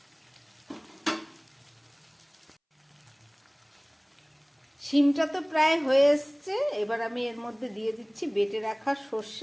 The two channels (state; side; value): identical; both; correlation 1.00